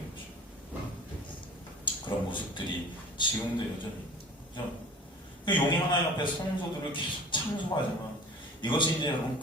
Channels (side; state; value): both; normal; correlation 0.43